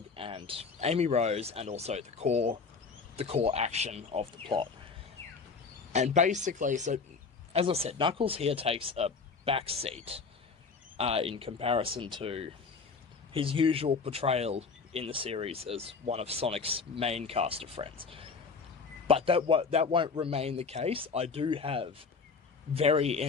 and Amy Rose, and also the core action of the plot. And basically, so as I said, Knuckles here takes a backseat in comparison to his usual portrayal in the series as one of Sonic's main cast of friends. But that won't remain the case. I do have very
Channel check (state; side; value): quieter; right; 4.9 dB